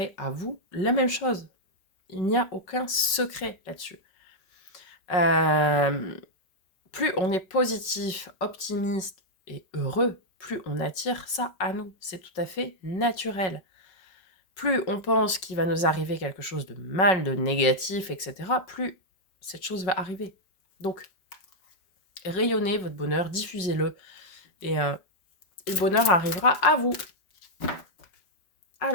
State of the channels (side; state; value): right; late; 5.4 ms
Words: à vous la même chose. Il n'y a aucun secret là-dessus. Plus on est positif, optimiste et heureux, plus on attire ça à nous. C'est tout à fait naturel. Plus on pense qu'il va nous arriver quelque chose de mal, de négatif, etc., plus cette chose va arriver. Donc, rayonnez votre bonheur, diffusez-le, et le bonheur arrivera à vous.